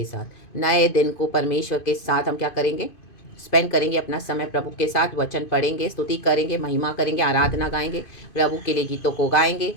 साथ। नए दिन को परमेश्वर के साथ हम क्या करेंगे? स्पेंड करेंगे अपना समय प्रभु के साथ। वचन पढ़ेंगे, स्तुति करेंगे, महिमा करेंगे, आराधना गाएंगे, प्रभु के लिए गीतों को गाएंगे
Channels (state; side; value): late; right; 2.5 ms